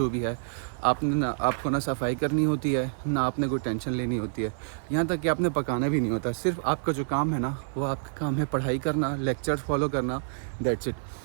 भी है, आपको ना सफाई करनी होती है, ना आपने कोई टेंशन लेनी होती है। यहाँ तक कि आपने पकाना भी नहीं होता। सिर्फ आपका जो काम है ना वो आपका काम है पढ़ाई करना, लेक्चर्स फॉलो करना, दैट्स इट।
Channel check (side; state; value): left; silent; 55 dB below the other